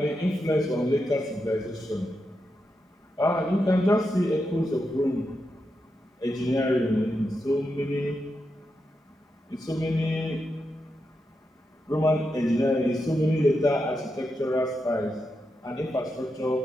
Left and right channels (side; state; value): both; normal; correlation 0.86